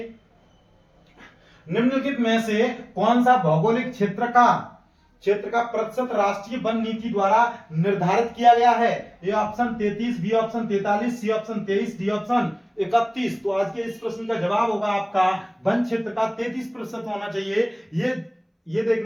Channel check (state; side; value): identical; both; correlation 1.00